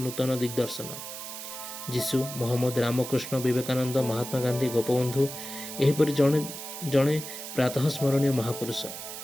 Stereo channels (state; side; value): noise; right; hiss, 9 dB below the sound